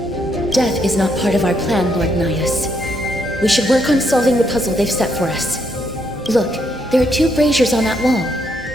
Death is not part of our plan, Lord Nias. We should work on solving the puzzle they've set for us. Look, there are 2 braziers on that wall.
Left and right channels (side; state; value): both; normal; correlation 0.75